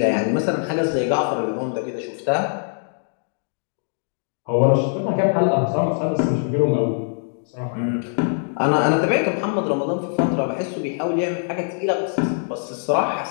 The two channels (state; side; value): silent; right; digital silence